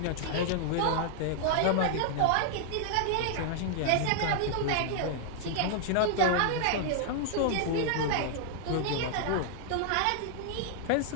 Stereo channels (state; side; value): different; both; correlation -0.01